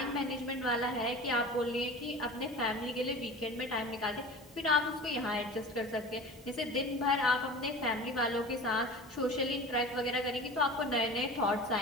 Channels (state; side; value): normal; both; correlation 0.36